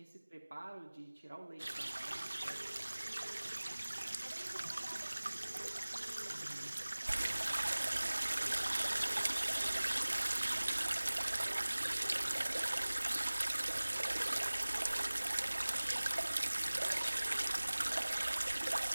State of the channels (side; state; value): both; inverted; correlation -1.00